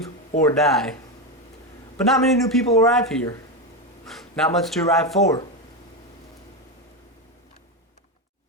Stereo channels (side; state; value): both; normal; correlation 0.12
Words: or die. But not many new people arrive here. Not much to arrive for.